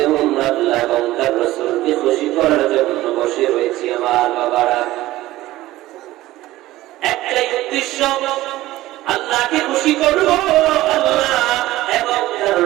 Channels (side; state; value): left; quieter; 16.6 dB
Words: আল্লাহ এবং তার রাসূলকে খুশি করার জন্য বসে রয়েছি আমার বাবারা। একটাই উদ্দেশ্য, আল্লাহকে খুশি করব, আল্লাহ এবং তার